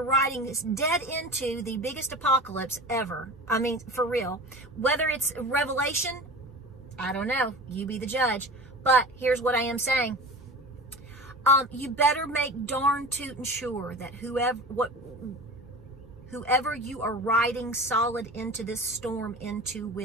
riding this dead into the biggest apocalypse ever. I mean, for real. Whether it's Revelation, I don't know. You be the judge. But here's what I am saying. You better make darn tootin' sure that whoever you are riding solid into this storm into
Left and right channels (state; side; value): normal; both; correlation 0.34